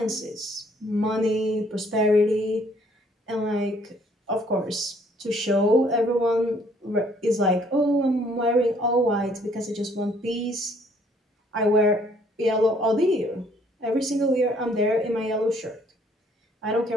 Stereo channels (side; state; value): both; normal; correlation 0.63